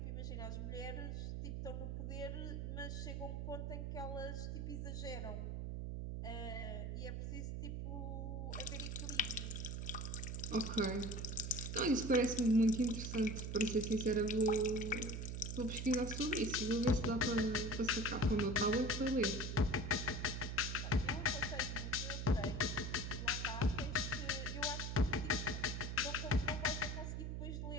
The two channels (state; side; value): noise; right; hum, 4 dB below the sound